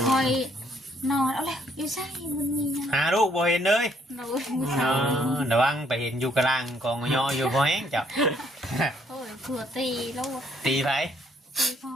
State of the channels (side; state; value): both; normal; correlation 0.67